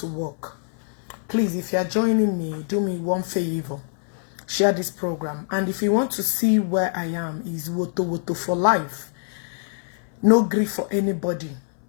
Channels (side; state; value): right; silent; 62 dB below the other